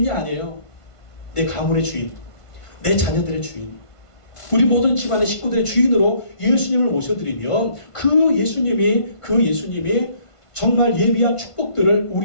아니에요. 내 가문의 주인, 내 자녀들의 주인, 우리 모든 집안의 식구들의 주인으로 예수님을 모셔드리면 그 예수님이 정말 예비한 축복들을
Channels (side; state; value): right; late; 1.5 ms